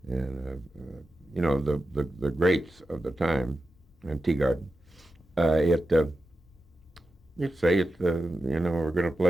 and the greats of the time, and Teagarden. You'd say we're going to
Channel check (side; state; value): both; normal; correlation 0.91